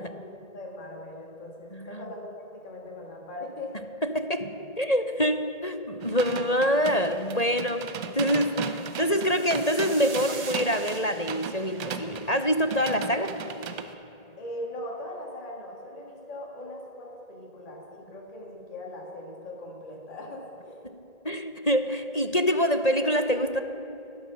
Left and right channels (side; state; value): right; late; 1.8 ms